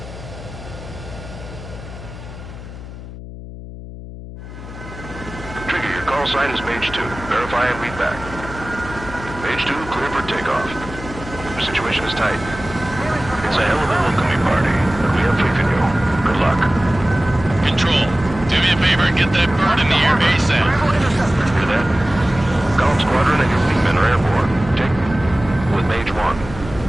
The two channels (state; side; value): noise; left; hum, 13 dB below the sound